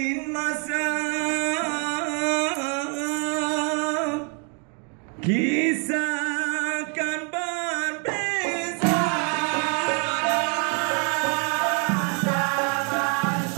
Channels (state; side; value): quieter; left; 37.6 dB